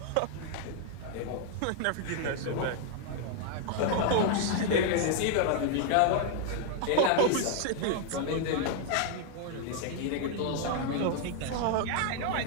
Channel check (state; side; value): different; both; correlation 0.00